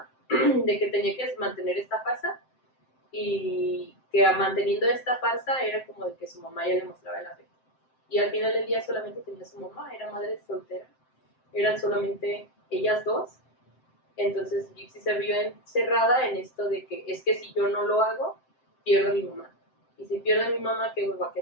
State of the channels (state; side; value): late; right; 7.7 ms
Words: de que tenía que mantener esta farsa, y que manteniendo esta farsa era como de que su mamá ya le mostraba el afecto. Y al final del día solamente tenía su mamá, era madre soltera, eran solamente ellas dos. Entonces Gypsy se vio encerrada en esto de que es que si yo no lo hago, pierdo a mi mamá. Y si pierdo a mi mamá, ¿qué me va a